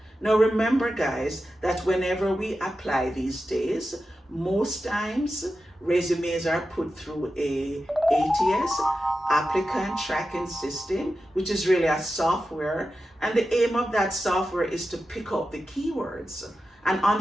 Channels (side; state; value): both; normal; correlation 0.91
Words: Now remember guys, that whenever we apply these days, most times resumes are put through a ATS, applicant tracking system, which is really a software, and the aim of that software is to pick up the keywords. And